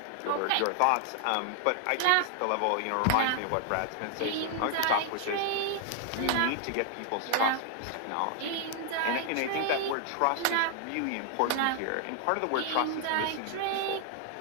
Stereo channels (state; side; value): different; both; correlation 0.00